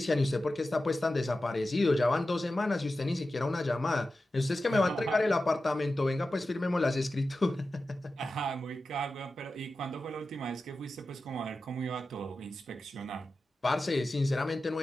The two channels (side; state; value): both; normal; correlation 0.93